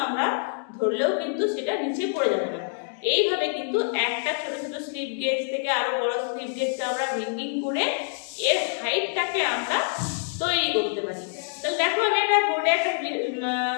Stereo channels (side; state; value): right; silent; digital silence